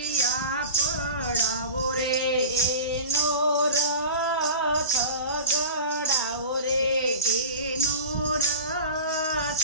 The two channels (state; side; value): inverted; both; correlation -0.34